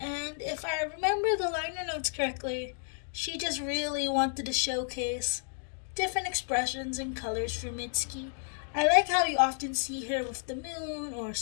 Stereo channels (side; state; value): right; silent; digital silence